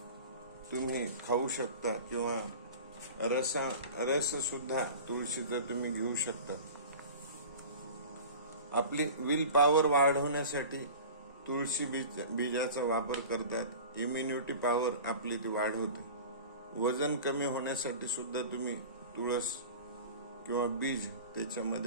तुम्ही खाऊ शकता किंवा रस सुद्धा तुळशीचा तुम्ही घेऊ शकता. आपली विल पॉवर वाढवण्यासाठी तुळशी बीजाचा वापर करतात. इम्युनिटी पॉवर आपली ती वाढवते. वजन कमी होण्यासाठी सुद्धा तुम्ही तुळस किंवा बीज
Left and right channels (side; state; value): both; inverted; correlation -0.37